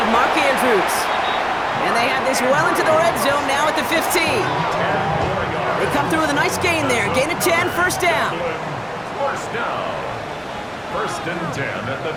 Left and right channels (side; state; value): both; identical; correlation 1.00